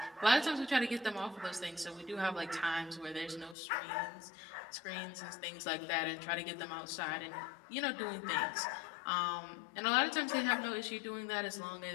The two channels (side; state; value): right; drops out; at 3.6 s